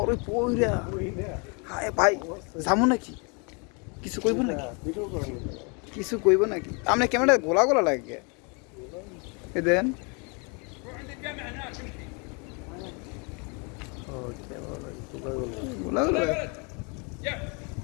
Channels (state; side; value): quieter; right; 33.3 dB